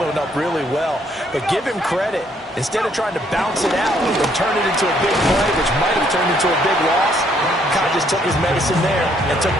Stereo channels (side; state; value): both; normal; correlation 0.68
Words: up really well. But give him credit. Instead of trying to bounce it out and turn it into a big play, which might have turned into a big loss, Kai just took his medicine there and took